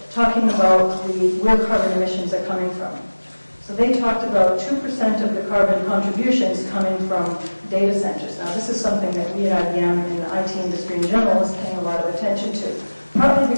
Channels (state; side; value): inverted; both; correlation -1.00